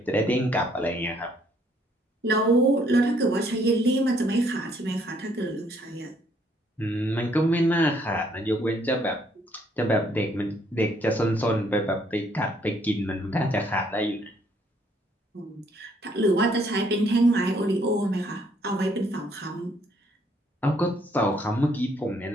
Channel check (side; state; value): both; normal; correlation 0.67